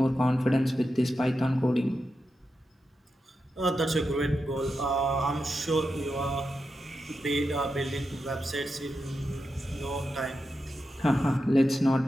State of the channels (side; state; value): both; normal; correlation 0.88